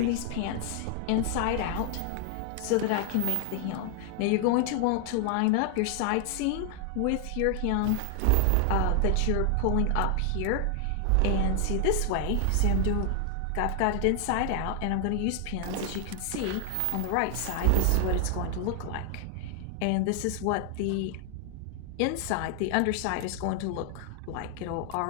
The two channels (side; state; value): both; different; correlation 0.00